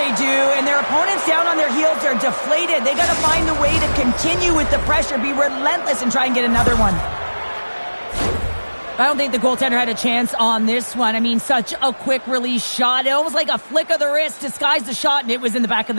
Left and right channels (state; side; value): inverted; both; correlation -1.00